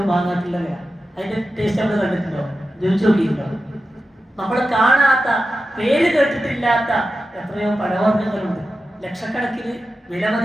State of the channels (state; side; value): normal; both; correlation 0.91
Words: വാങ്ങാത്തില്ല വില. അതിന്റെ ടേസ്റ്റ് നമ്മൾ കണ്ടിട്ടുണ്ടോ? രുചിച്ച് നോക്കിയിട്ടുണ്ടോ? നമ്മൾ കാണാത്ത, പേര് കേട്ടിട്ടില്ലാത്ത എത്രയോ പഴവർഗ്ഗങ്ങളുണ്ട്. ലക്ഷക്കണക്കിന് വില